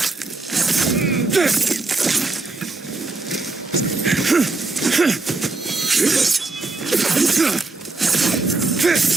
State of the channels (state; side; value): quieter; left; 3.5 dB